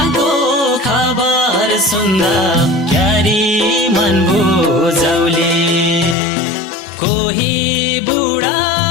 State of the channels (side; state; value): right; drops out; at 6.2 s